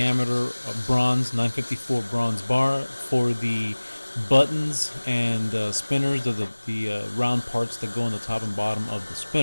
bronze, 954 bronze bar for the buttons and spinners, the round parts that go on the top and bottom of the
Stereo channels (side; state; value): both; inverted; correlation -1.00